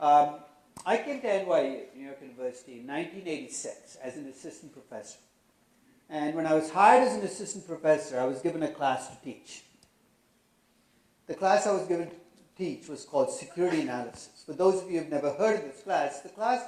I came to NYU, New York University, in 1986 as an assistant professor. And when I was hired as an assistant professor, I was given a class to teach. The class I was given to teach was called Security Analysis. For those of you who have never heard of this class, the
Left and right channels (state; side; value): identical; both; correlation 1.00